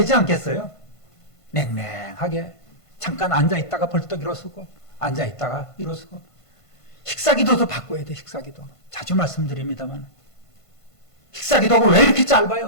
않겠어요? 냉랭하게 잠깐 앉아있다가 벌떡 일어서고 앉아있다가 일어서고 식사기도도 바꿔야 돼. 식사기도 자주 말씀드립니다만 식사기도가 왜 이렇게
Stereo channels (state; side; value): late; right; 1.5 ms